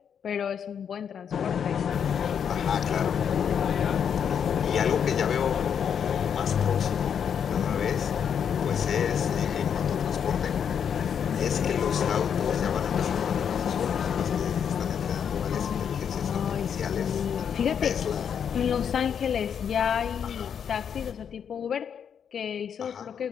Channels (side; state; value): right; quieter; 7.8 dB